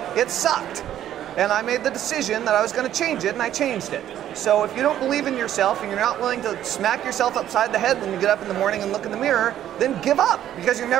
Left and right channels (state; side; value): quieter; left; 11.5 dB